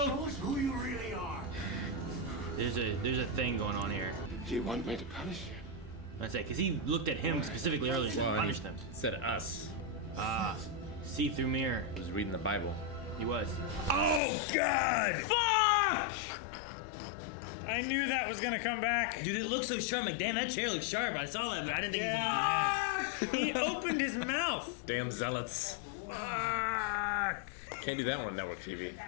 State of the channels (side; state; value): right; drops out; at 14.2 s